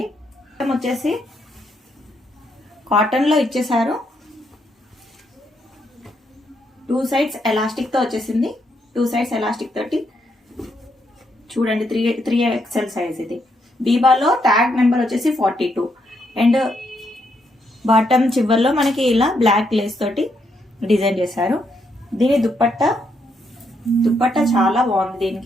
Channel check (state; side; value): normal; both; correlation 0.77